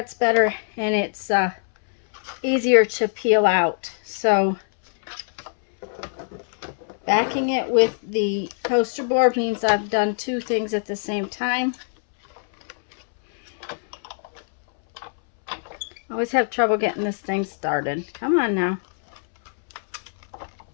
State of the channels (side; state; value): right; silent; 63 dB below the other